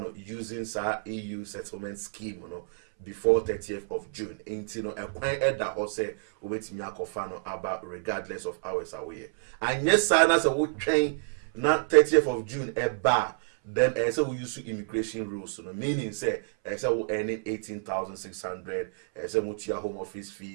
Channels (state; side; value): silent; left; 59 dB below the other